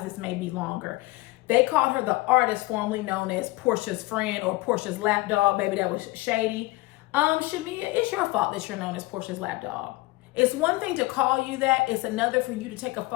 This may be longer. They called her the artist formerly known as Porsha's friend or Porsha's lapdog. Baby, that was shady. Shamea, it's your fault that you're known as Porsha's lapdog. It's one thing to call you that. It's another for you to take a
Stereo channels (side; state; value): right; quieter; 21.1 dB